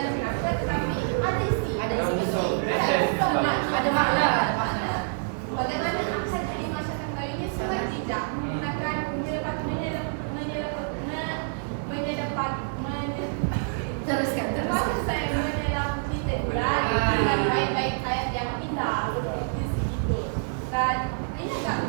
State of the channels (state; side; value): silent; left; digital silence